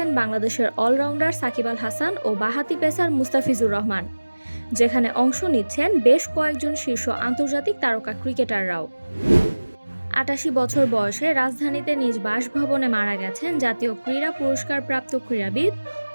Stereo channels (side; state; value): both; inverted; correlation -1.00